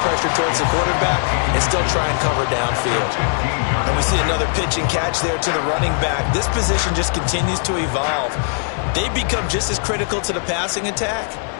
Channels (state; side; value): silent; right; digital silence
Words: pressure towards the quarterback and still try and cover downfield. And we see another pitch and catch there to the running back. This position just continues to evolve. They become just as critical to the passing attack